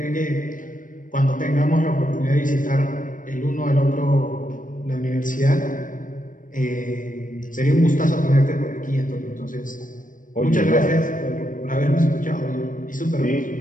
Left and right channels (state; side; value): late; right; 0.38 ms